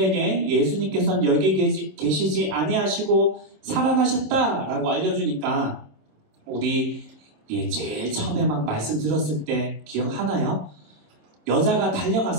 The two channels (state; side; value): late; left; 26 ms